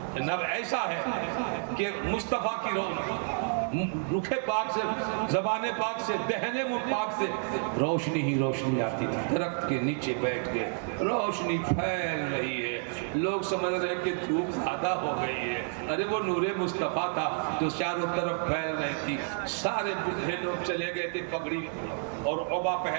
جناب ایسا ہے کہ مصطفیٰ کی رخ پاک سے، زبان پاک سے، دہنے منہ پاک سے روشنی ہی روشنی آتی تھی۔ درخت کے نیچے بیٹھ گئے، روشنی پھیل رہی ہے، لوگ سمجھ رہے کہ دھوپ زیادہ ہو گئی ہے، ارے وہ نور مصطفیٰ تھا جو چاروں طرف پھیل رہی تھی۔ سارے بوڑھے لوگ چلے گئے تھے پگڑی اور عبا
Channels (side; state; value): left; silent; 58 dB below the other